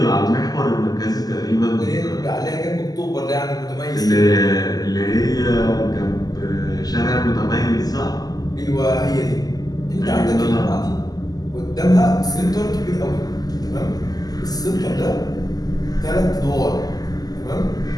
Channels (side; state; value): right; late; 0.18 ms